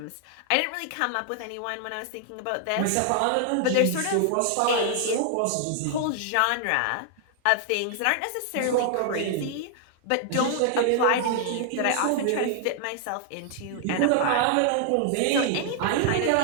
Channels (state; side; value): different; both; correlation 0.00